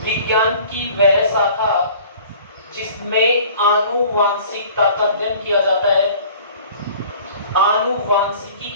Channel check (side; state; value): both; inverted; correlation -0.48